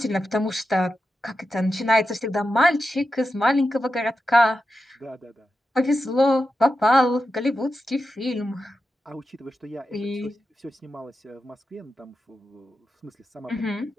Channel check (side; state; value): both; normal; correlation 0.90